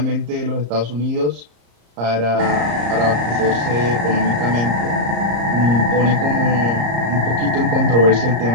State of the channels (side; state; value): left; late; 34 ms